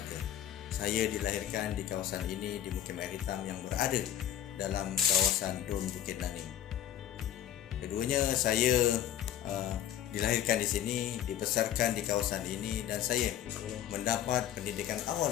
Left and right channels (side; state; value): right; quieter; 11.0 dB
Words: Saya dilahirkan di kawasan ini di Mukim Air Hitam yang berada dalam kawasan Don Bukit Naning. Keduanya saya dilahirkan di sini, dibesarkan di kawasan ini, dan saya mendapat pendidikan